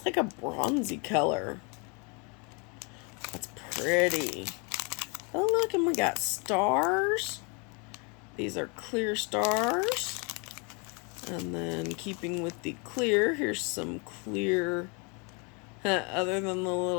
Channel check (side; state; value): right; quieter; 33.2 dB